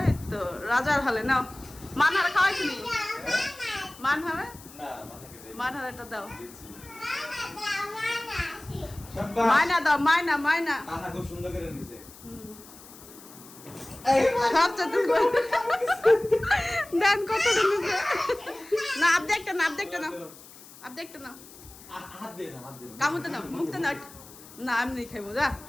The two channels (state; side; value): noise; left; hiss, 19 dB below the sound